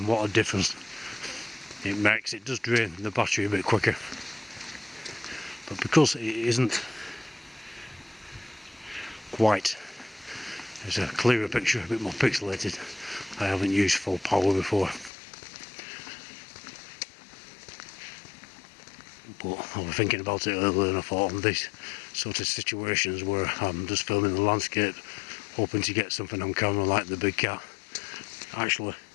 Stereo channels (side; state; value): right; drops out; at 15.1 s